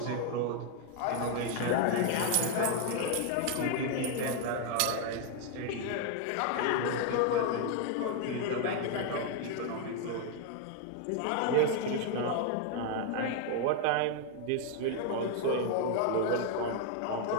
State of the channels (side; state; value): both; different; correlation 0.00